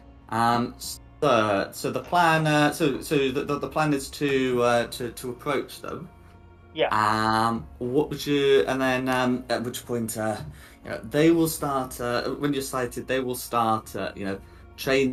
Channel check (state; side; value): identical; both; correlation 1.00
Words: So the plan the plan is to approach them. Yeah. What would you and then at which point they will start when you're sighted they will start